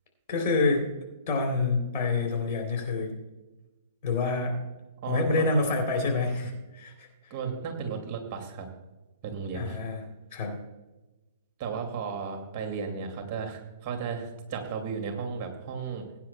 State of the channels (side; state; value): both; inverted; correlation -0.46